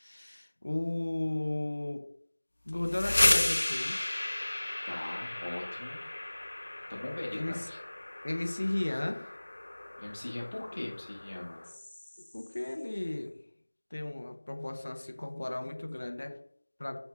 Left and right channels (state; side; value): inverted; both; correlation -1.00